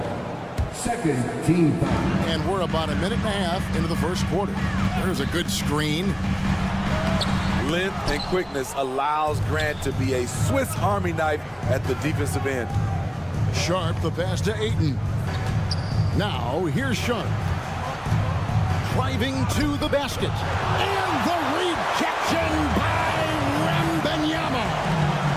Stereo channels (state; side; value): identical; both; correlation 1.00